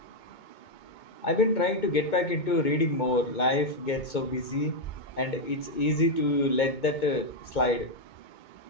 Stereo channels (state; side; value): late; right; 2.2 ms